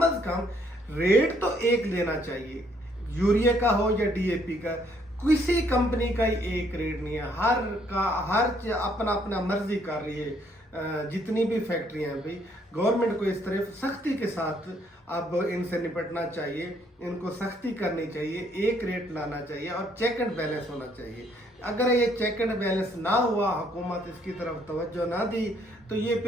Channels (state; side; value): normal; both; correlation 0.67